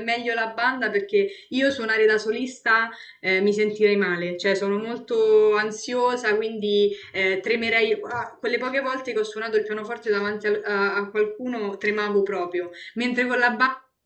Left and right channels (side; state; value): both; identical; correlation 1.00